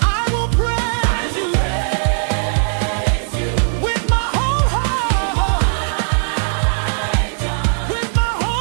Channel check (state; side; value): silent; left; digital silence